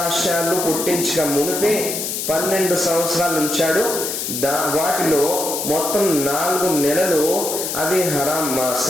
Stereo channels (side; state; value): left; noise; hiss, 3 dB below the sound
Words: పుట్టించక మునిపే 12 సంవత్సరాలు ఉంచాడు. వాటిలో మొత్తం 4 నెలలు అవి హరాం